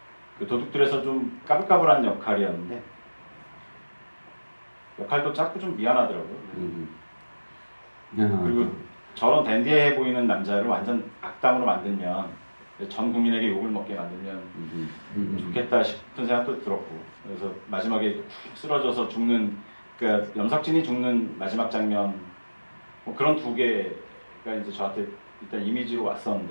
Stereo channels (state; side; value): inverted; both; correlation -1.00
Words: 그 도둑들에서 좀 까불까불한 역할이었는데 역할도 작고 좀 미안하더라고요. 그리고 저런 댄디해 보이는 남자를 완전 악당으로 만들면 전 국민에게 욕을 먹게 만들면 좋겠다 싶은 생각도 들었고, 그래서 마지막에 푹 쓰러져서 죽는, 그러니까 염석진이 죽는 마지막 장면 뭐 그런 두 개가 이제 저한테 일단 이미지로